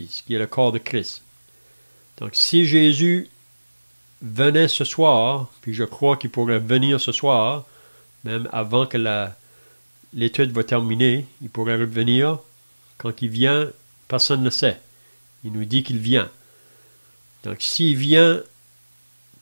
qui est le corps de Christ. Donc, si Jésus venait ce soir, puis je crois qu'il pourrait venir ce soir, même avant que l'étude va terminer, il pourrait revenir. Quand il vient, personne ne le sait. Il nous dit qu'il vient. Donc, s'il vient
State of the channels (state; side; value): inverted; both; correlation -1.00